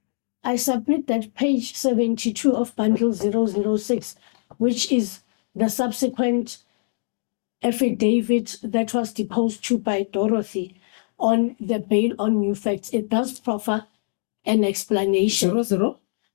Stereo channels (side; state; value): right; silent; digital silence